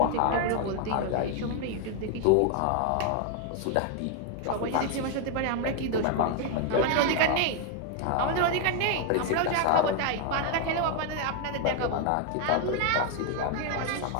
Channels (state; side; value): different; both; correlation 0.01